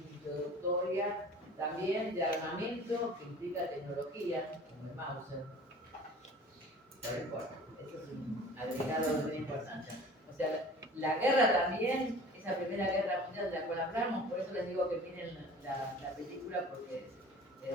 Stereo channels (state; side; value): normal; both; correlation 0.44